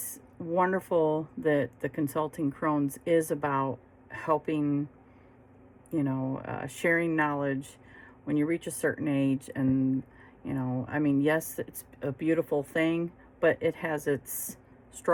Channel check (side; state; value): both; identical; correlation 1.00